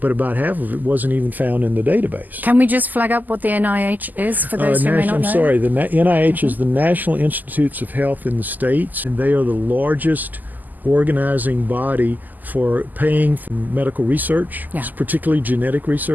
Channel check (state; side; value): late; left; 0.084 ms